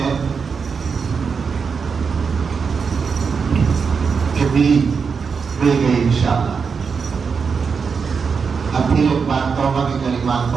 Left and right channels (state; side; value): quieter; left; 5.7 dB